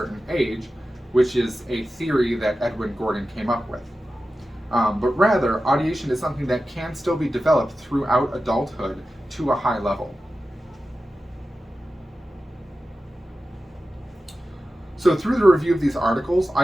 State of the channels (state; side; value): normal; both; correlation 0.93